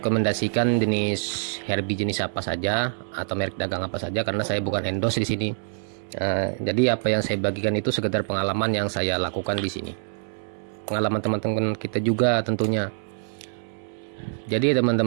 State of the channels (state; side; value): silent; left; 62 dB below the other